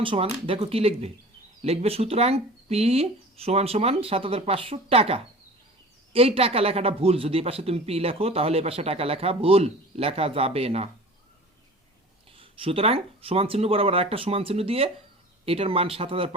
সমান, দেখো কি লিখবে, লিখবে সুতরাং পি সমান সমান 7,500 টাকা। এই টাকা লেখাটা ভুল, যদি এই পাশে তুমি পি লেখো তাহলে এই পাশে টাকা লেখা ভুল, লেখা যাবে না। সুতরাং সমান চিহ্ন বরাবর আরেকটা সমান চিহ্ন দিয়ে এটার মান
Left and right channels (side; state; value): both; normal; correlation 0.40